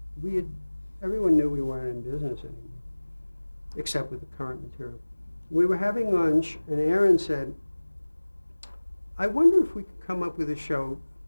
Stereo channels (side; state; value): both; inverted; correlation -1.00